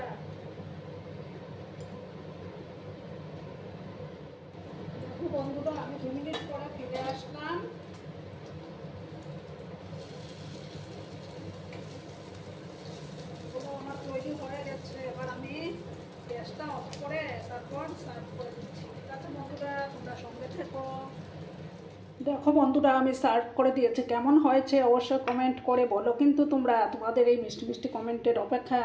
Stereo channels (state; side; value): identical; both; correlation 1.00